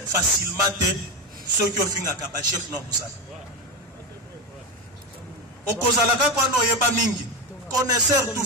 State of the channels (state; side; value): normal; both; correlation 0.16